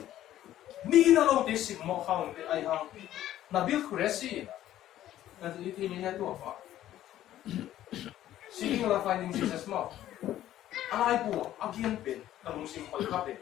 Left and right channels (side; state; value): right; quieter; 12.9 dB